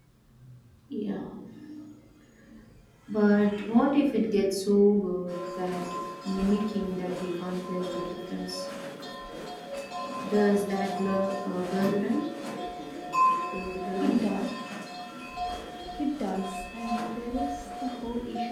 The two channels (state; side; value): identical; both; correlation 1.00